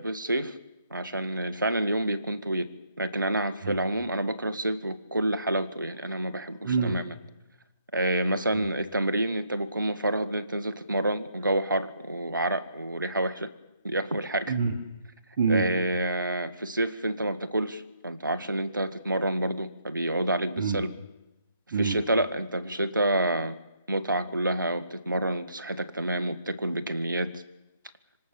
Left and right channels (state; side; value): inverted; both; correlation -0.71